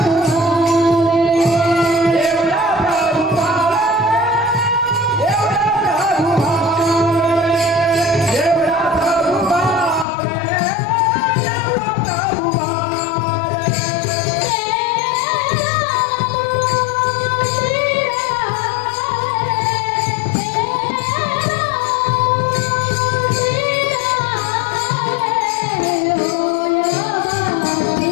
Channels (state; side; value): drops out; right; at 10.1 s